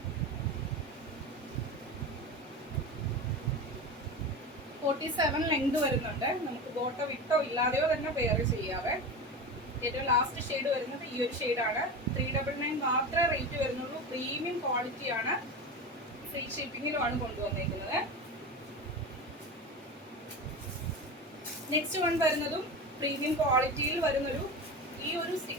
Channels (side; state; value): both; normal; correlation 0.26